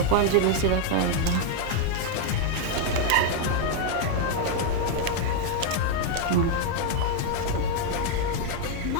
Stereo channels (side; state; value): both; different; correlation 0.00